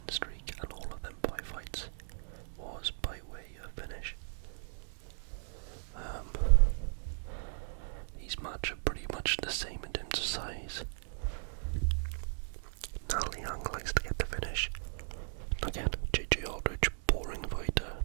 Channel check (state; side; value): silent; left; digital silence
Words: streak, and all of them 5 fights was by way of finish. These match are pretty much the same in terms of size. Na Liang likes to get the finish. Again, JJ Aldridge, boring fighter.